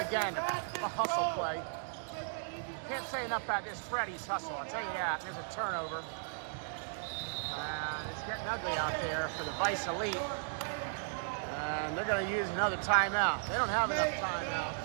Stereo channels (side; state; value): left; silent; digital silence